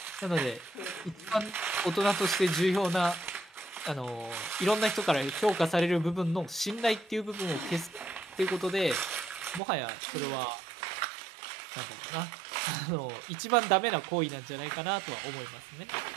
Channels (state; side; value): drops out; left; at 9.6 s